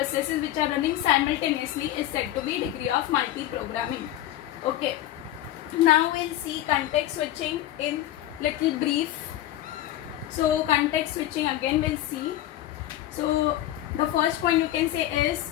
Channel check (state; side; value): quieter; right; 13.6 dB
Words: which are running simultaneously is said to be degree of multiprogramming. Okay. Now we'll see context switching in little brief. So context switching again we'll see. So the first point you can say is